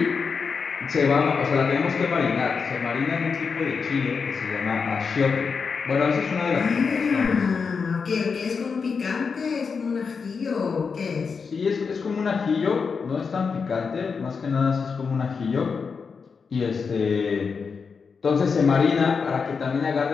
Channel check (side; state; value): right; quieter; 5.4 dB